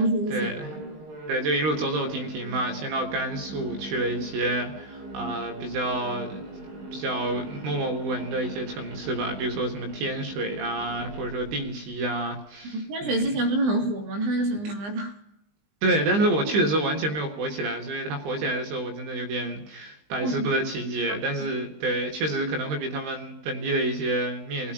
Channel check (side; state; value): left; late; 20 ms